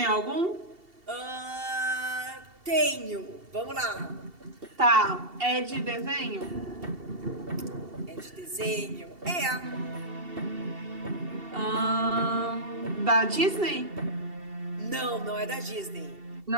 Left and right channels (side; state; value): left; late; 2.7 ms